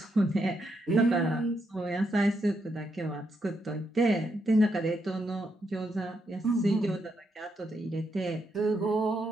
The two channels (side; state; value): both; normal; correlation 0.80